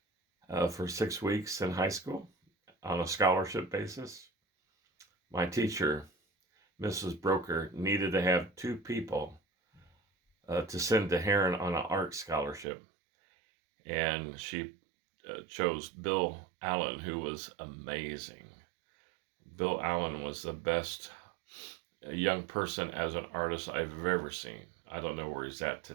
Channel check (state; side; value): drops out; left; at 12.7 s